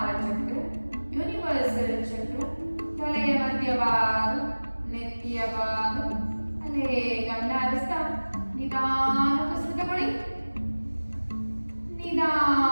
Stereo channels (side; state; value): both; inverted; correlation -1.00